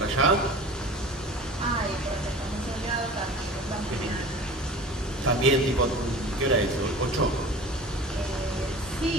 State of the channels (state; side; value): normal; both; correlation 0.39